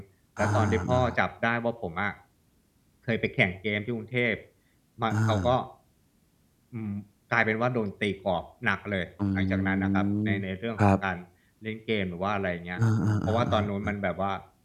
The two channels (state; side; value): identical; both; correlation 1.00